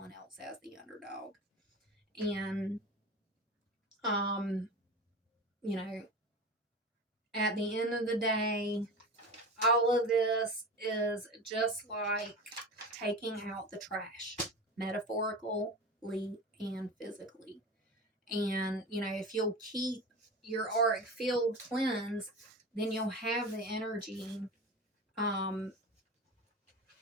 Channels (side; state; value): both; normal; correlation 0.30